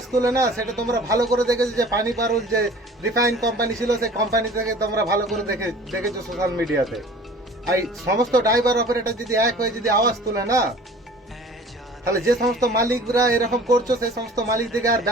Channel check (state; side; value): normal; both; correlation 0.46